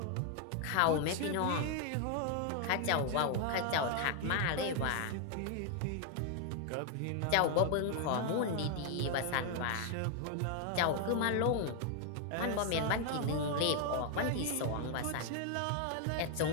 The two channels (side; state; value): both; different; correlation 0.00